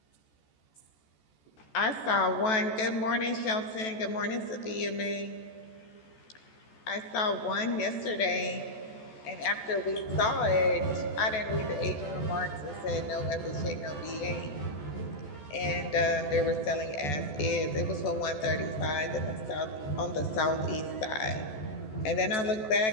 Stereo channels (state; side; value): late; right; 14 ms